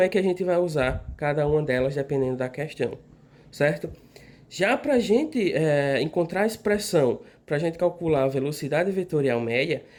é que a gente vai usar cada uma delas dependendo da questão. Certo? Já para a gente encontrar a expressão, para a gente calcular a velocidade vetorial média,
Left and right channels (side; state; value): both; identical; correlation 1.00